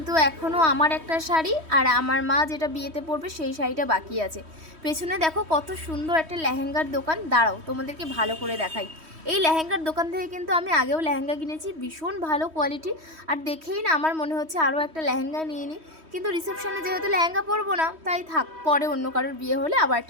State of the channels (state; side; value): late; left; 3.1 ms